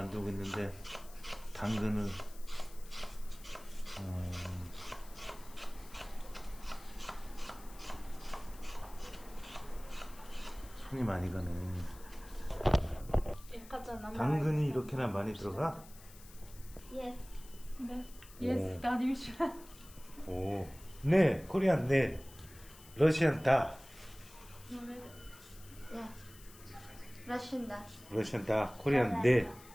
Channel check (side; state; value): left; noise; hiss, 20 dB below the sound